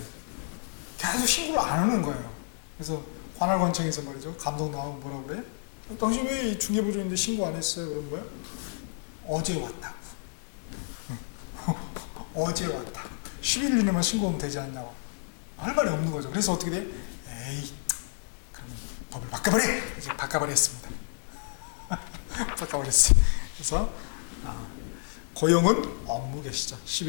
계속 신고를 안 하는 거예요. 그래서 관할관청에서 말이죠. 감독 나오고 뭐라고 그래? 당신 왜 중개보조인데 신고 안 했어요? 그럼 뭐야? 어제 왔다고. 어제 왔다고. 10일 이내만 신고하면 되지 않냐고. 할 말이 없는 거죠. 그래서 어떻게 돼? 에이, 그러면 법을 바꿔버려! 이제 바꿔버렸습니다. 바꿔버렸어요. 그래서 고용은 업무 개시죠.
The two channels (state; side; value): silent; right; digital silence